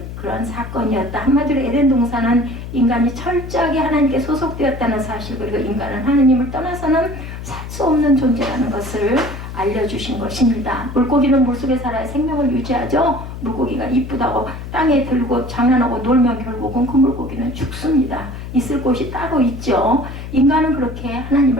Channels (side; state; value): left; noise; hum, 9 dB below the sound